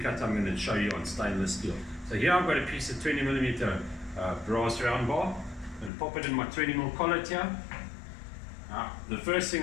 cut I'm going to show you on stainless steel. So here I've got a piece of 20mm brass round bar. I'm going to pop it in my 20mm collet here. Now, the first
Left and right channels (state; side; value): drops out; right; at 5.9 s